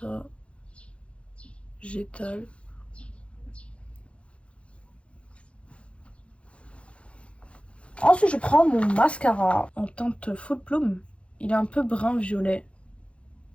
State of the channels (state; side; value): late; right; 0.060 ms